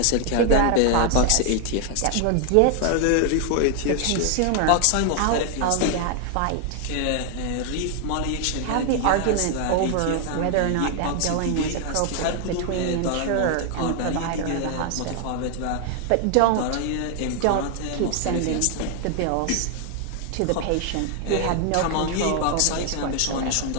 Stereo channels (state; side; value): different; both; correlation 0.00